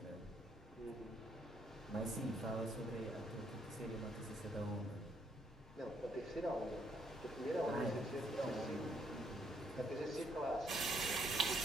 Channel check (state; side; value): normal; both; correlation 0.71